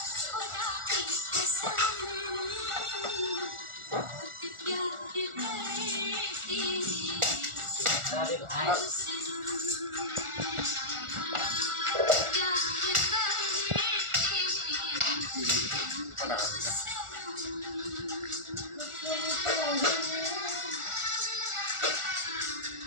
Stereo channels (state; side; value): late; left; 1.4 ms